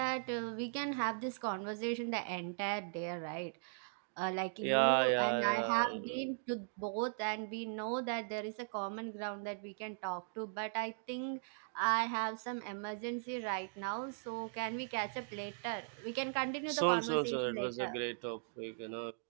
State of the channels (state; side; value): silent; left; digital silence